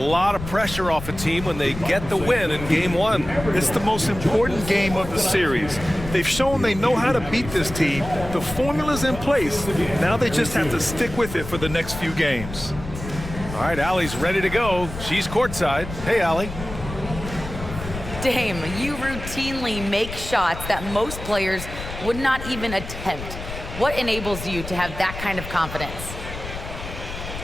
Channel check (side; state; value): left; noise; rumble, 10 dB below the sound